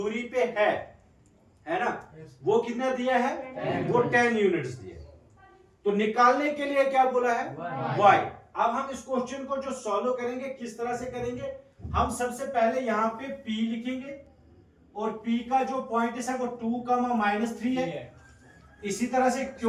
पे है ना, वो कितना दिया है, वो 10 यूनिट्स दिए। तो निकालने के लिए क्या बोला है, y। अब हम इस क्वेश्चन को जो सॉल्व करेंगे किस तरह से करेंगे, हम सबसे पहले यहाँ पे p लिखेंगे और p का जो पॉइंट है वो 2,-3 है। इसी तरह से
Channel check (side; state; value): both; identical; correlation 1.00